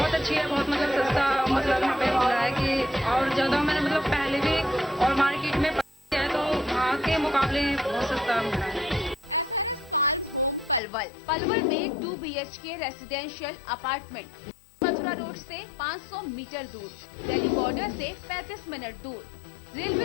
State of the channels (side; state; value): right; drops out; at 10.8 s